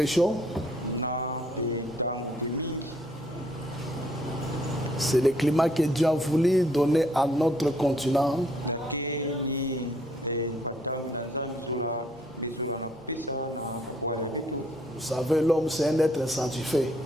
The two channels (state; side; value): noise; right; hum, 28 dB below the sound